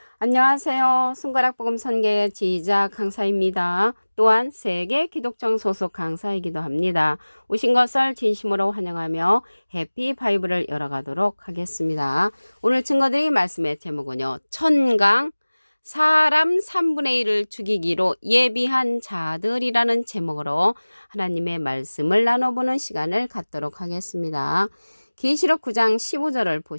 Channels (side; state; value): both; inverted; correlation -1.00